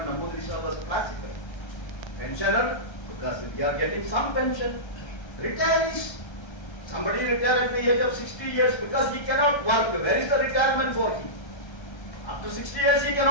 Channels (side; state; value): right; late; 1.3 ms